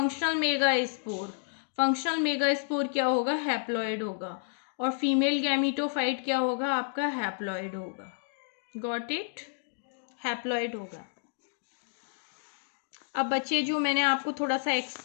मेगा स्पोर क्या होगा, हैप्लॉइड होगा। और फीमेल गैमीटोफाइट क्या होगा आपका, हैप्लॉइड होगा। गॉट इट, हैप्लॉइड होगा। अब बच्चे जो मैंने आपको थोड़ा सा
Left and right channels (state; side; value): silent; right; digital silence